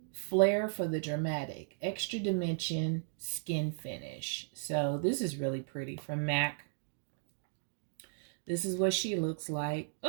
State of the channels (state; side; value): silent; left; digital silence